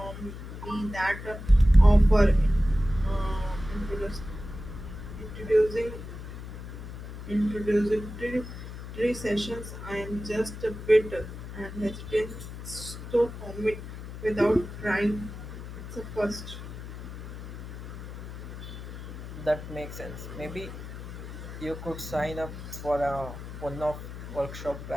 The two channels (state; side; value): noise; left; hum, 10 dB below the sound